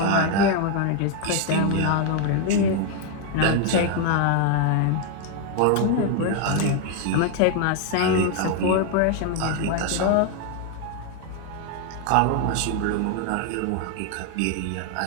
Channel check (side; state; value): both; different; correlation 0.01